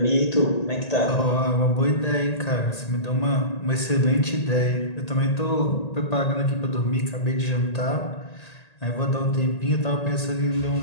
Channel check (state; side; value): late; right; 1.8 ms